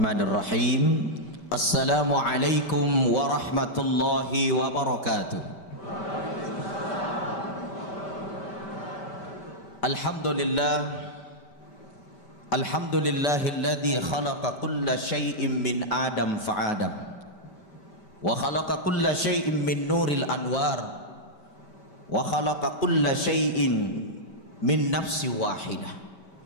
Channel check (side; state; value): right; late; 5.1 ms